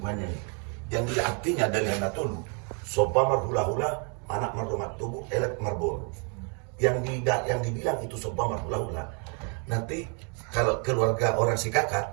ini. Yang dia artinya dari Hanatolu, sopa marhula-hula, anak mardomat tubuh, elek marbol. Yang dibilang itu sopa marhula-hula. Nanti kalau keluarga orang si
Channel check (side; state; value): left; quieter; 37.8 dB